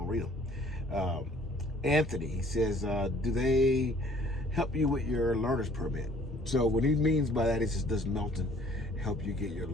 read them. Anthony says, do they help you with your learner's permit? So what he means by that is, does Melton help you get your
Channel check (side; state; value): both; normal; correlation 0.56